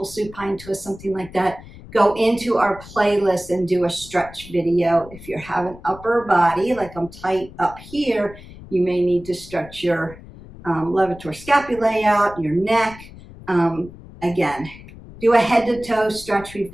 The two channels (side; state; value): left; noise; rumble, 18 dB below the sound